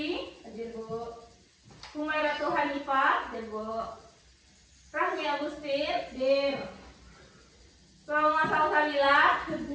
Hadir, Bu. Humairatu Hanifah. Hadir, Bu. Rahmi Agustin. Hadir. Salma Salsabila.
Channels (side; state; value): both; identical; correlation 1.00